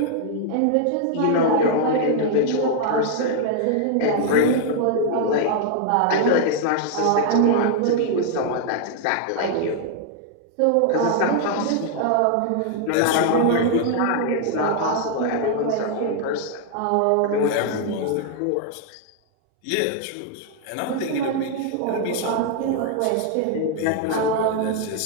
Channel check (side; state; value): both; different; correlation 0.00